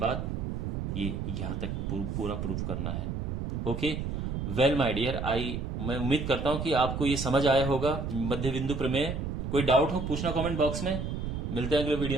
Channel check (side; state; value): right; noise; rumble, 3 dB below the sound